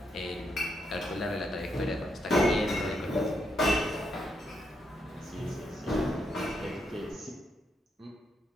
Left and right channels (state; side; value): normal; both; correlation 0.80